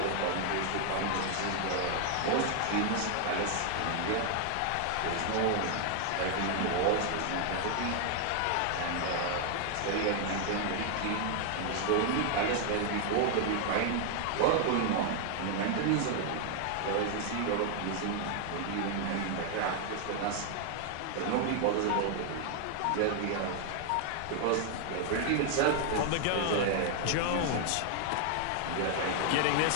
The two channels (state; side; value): different; both; correlation 0.00